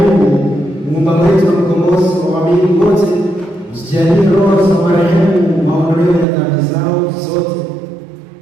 Muumba wetu na mkombozi wa waamini wote, usijalie roho za marehemu maondoleo ya dhambi zao zote,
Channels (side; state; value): left; drops out; at 6.2 s